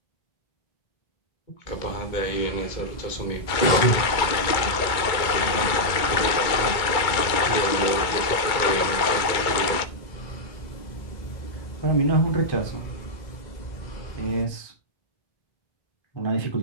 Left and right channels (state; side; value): late; right; 2.2 ms